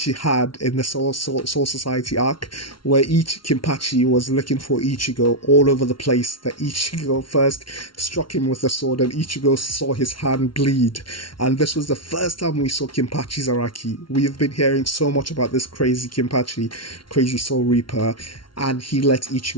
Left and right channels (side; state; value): right; late; 0.73 ms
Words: had in the Soul Society arc, where Kenpachi was looking for Ichigo all over the place. That Ichigo first struck him with a sword, and Ichigo saw his hand bleed. And this was the first time we saw Kenpachi's Araki. We have been hearing so much about this crazy Kenpachi, crazy Soul Reaper, and he let